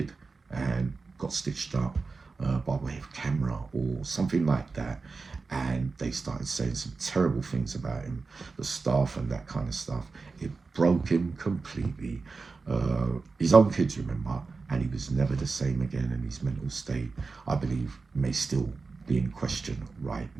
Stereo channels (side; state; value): left; quieter; 4.3 dB